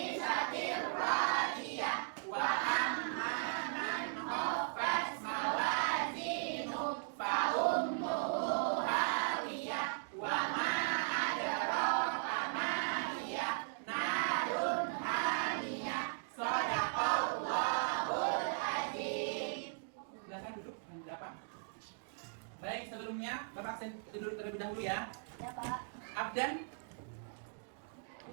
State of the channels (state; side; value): silent; left; digital silence